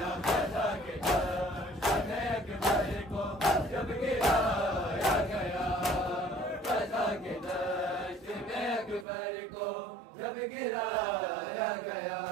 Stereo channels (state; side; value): drops out; left; at 9.1 s